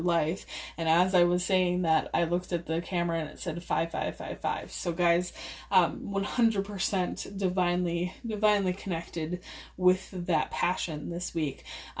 And as I was saying that, I looked at the camera and it said 5555. So guys, 100% divinely connected with that passion this week.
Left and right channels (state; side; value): identical; both; correlation 1.00